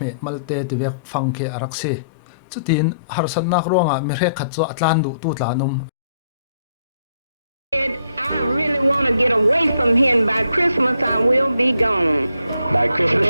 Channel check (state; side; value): inverted; both; correlation -0.71